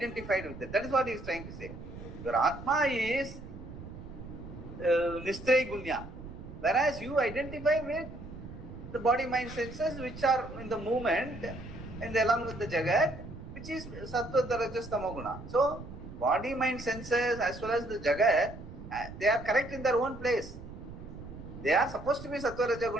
with it. That is what he is trying to say. Your Atma is Nistraya Gunya, whereas you identify with the body, mind, senses which are in the movement and along with the Jagat, which is Sattva, Rajas, Tamoguna. So, body, mind, senses as well as the Jagat, they are correct in their own place. They are supposed to be Sattva, Raja,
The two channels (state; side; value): noise; right; rumble, 13 dB below the sound